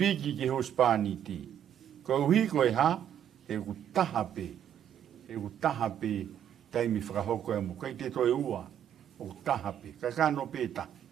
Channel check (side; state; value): left; quieter; 9.8 dB